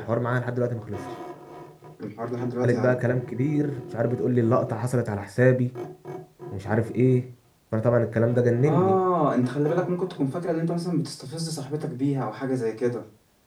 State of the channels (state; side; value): identical; both; correlation 1.00